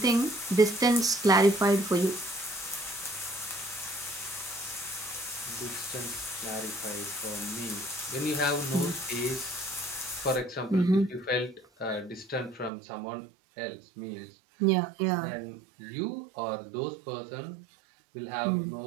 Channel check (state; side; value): drops out; left; at 12.7 s